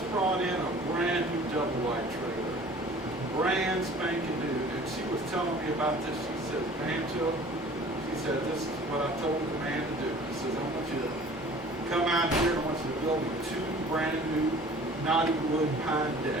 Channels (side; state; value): both; normal; correlation 0.48